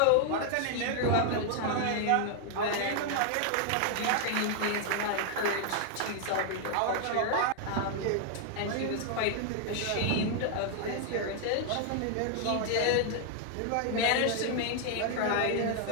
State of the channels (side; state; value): both; different; correlation 0.00